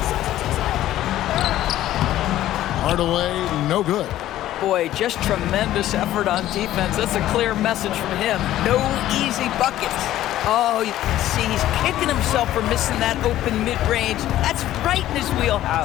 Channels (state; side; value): quieter; right; 13.6 dB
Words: Hardaway, no good. Boy, just tremendous effort on defense. That's a clear message from him. No easy buckets. Oh, you can see he's kicking himself for missing that open mid-range. That's right in his